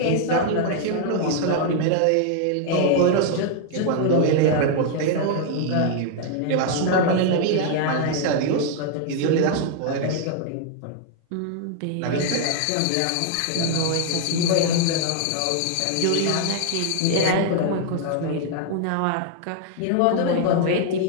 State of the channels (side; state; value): both; different; correlation 0.00